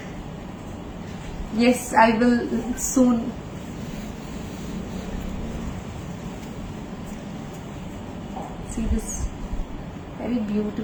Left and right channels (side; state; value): both; identical; correlation 1.00